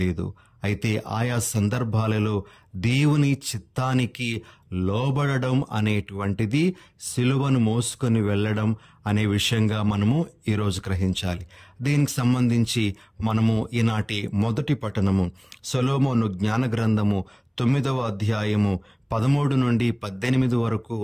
అయితే ఆయా సందర్భాలలో దేవుని చిత్తానికి లోబడడం అనేటువంటిది సిలువను మోసుకొని వెళ్ళడం అనే విషయంగా మనము ఈరోజు గ్రహించాలి. దీనికి సంబంధించి మనము ఈనాటి మొదటి పఠనము సొలొమోను జ్ఞాన గ్రంథము 9వ అధ్యాయము 13 నుండి 18 వరకు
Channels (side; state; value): both; identical; correlation 1.00